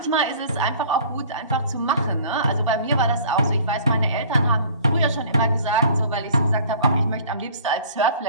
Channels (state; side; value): inverted; both; correlation -0.48